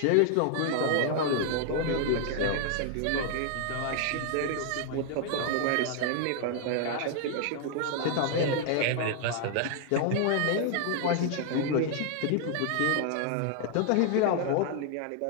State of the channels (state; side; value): different; both; correlation 0.00